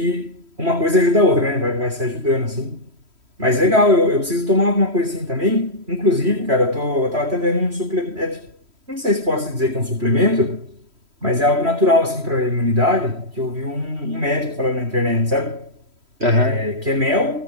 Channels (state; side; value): late; left; 3.1 ms